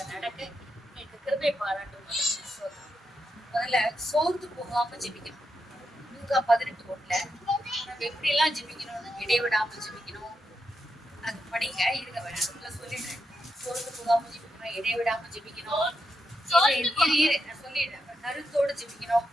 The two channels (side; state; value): both; normal; correlation 0.85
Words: நடக்க எனக்கு கிருபை பாராட்டும். முதல்ல சோர்ந்து போகாம ஜெபிக்கணும். லூக்கா 18:1 நம்ம எப்படி எல்லாம் ஜெபிக்கணும்னு இடைவிடாம ஜெபிக்கணும். அது படிங்க இருங்க வேணும்ல சொல்லிடுறேன். சோர்ந்து போகாம ஜெபிக்கணும், இடைவிடாம ஜெபிக்கணும். நான் சொல்லிடுறேன். கருத்தோட ஜெபிக்கணும்.